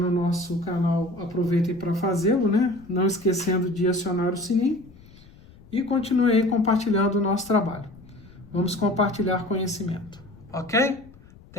nosso canal, aproveitem para fazê-lo, né? Não esquecendo de acionar o sininho. E continue aí compartilhando o nosso trabalho. Vamos compartilhar conhecimento, ok?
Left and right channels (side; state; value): left; noise; rumble, 23 dB below the sound